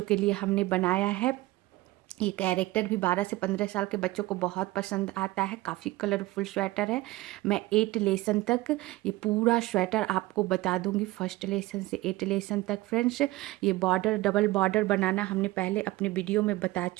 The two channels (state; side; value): quieter; left; 18.9 dB